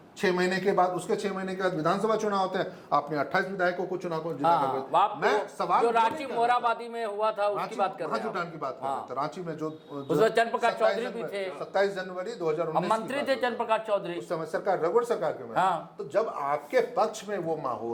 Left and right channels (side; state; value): both; identical; correlation 1.00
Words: 6 महीने के बाद, उसके 6 महीने के बाद विधानसभा चुनाव होते हैं, आपने 28 विधायकों को चुनाव को जीता करके। मैं सवाल जो रांची मोराबादी में हुआ था उसकी बात कर रहा हूं, महाजुटान की बात कर रहा था। रांची में जो चंद्रप्रकाश चौधरी भी थे, 27 जनवरी 2019 मंत्री थे चंद्रप्रकाश चौधरी उस समय सरकार, रघुवर सरकार के में। तो जब आपके पक्ष में वो